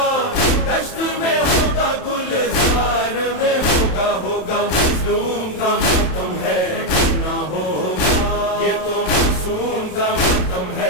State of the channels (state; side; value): late; right; 27 ms